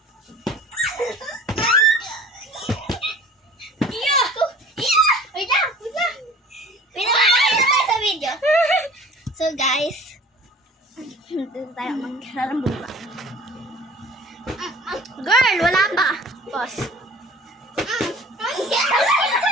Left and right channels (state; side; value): normal; both; correlation 0.46